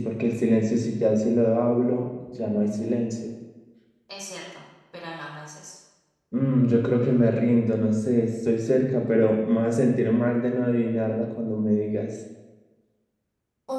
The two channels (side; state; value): both; identical; correlation 1.00